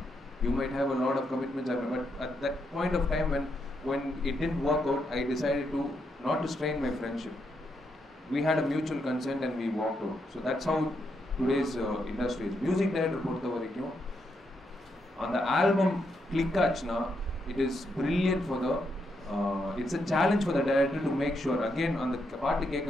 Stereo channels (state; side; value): normal; both; correlation 0.80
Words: You might have a lot of commitments, but at that point of time when it didn't work out, I decided to not to strain my friendship. We had a mutual consent and we walked out. So that's how today's industry is. Music director பொறுத்த வரைக்கும் அந்த album click ஆச்சுன்னா it is brilliant for the it's a challenge for the director to make sure again அந்த பாட்டு